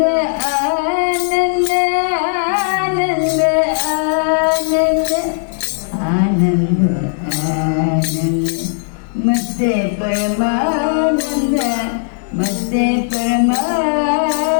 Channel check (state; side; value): silent; right; digital silence